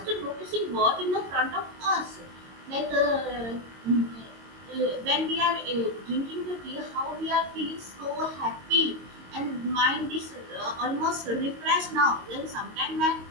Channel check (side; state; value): left; late; 22 ms